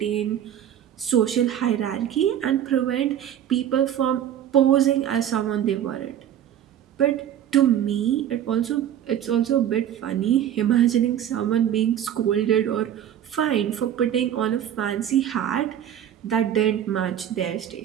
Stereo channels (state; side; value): quieter; left; 10.4 dB